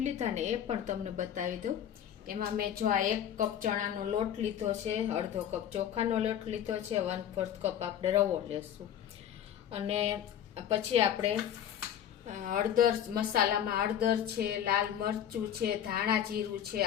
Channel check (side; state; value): right; quieter; 9.8 dB